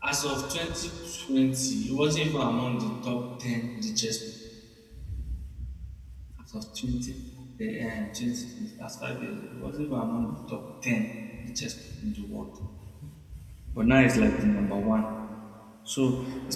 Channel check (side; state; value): both; identical; correlation 1.00